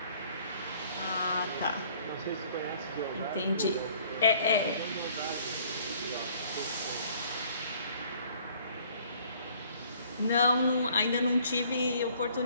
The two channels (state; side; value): inverted; both; correlation -0.57